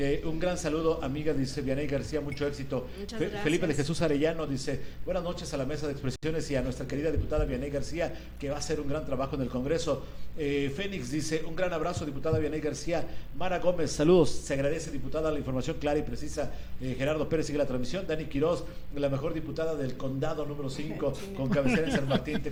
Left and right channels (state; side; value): identical; both; correlation 1.00